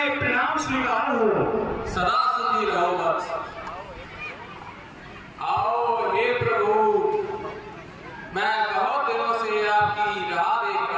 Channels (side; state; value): both; identical; correlation 1.00